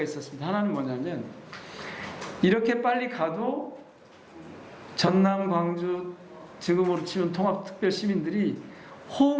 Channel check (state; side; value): identical; both; correlation 1.00